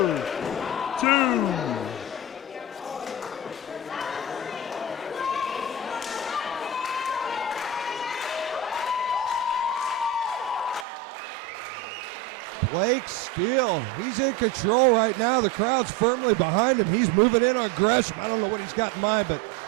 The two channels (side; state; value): left; drops out; at 10.9 s